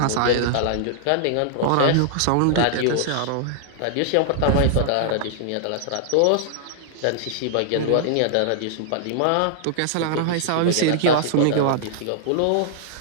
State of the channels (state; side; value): different; both; correlation -0.01